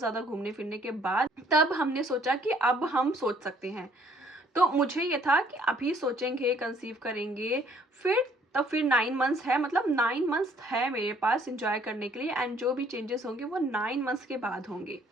घूमने फिरने के बाद, तब हमने सोचा कि अब हम सोच सकते हैं। तो मुझे ये था कि अभी सोचेंगे, कंसीव करेंगे, फिर 9 मंथ्स है, मतलब 9 मंथ्स है मेरे पास इंजॉय करने के लिए, एंड जो भी चेंजेस होंगे वो 9 मंथ्स के बाद होंगे।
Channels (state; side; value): normal; both; correlation 0.62